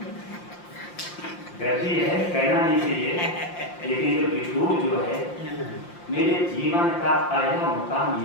गलती है, कहना नहीं चाहिए, लेकिन जो बिछूर जो है मेरे जीवन का पहला मुकाम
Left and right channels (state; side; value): late; right; 5.7 ms